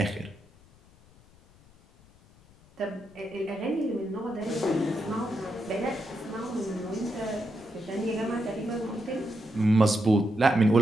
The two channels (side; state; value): left; noise; rumble, 27 dB below the sound